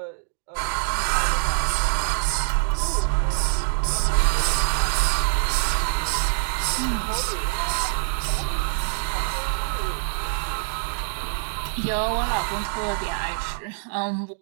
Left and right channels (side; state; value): left; silent; digital silence